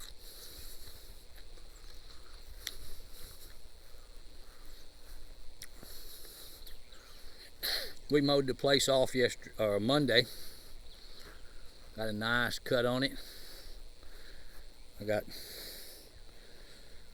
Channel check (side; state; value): both; identical; correlation 1.00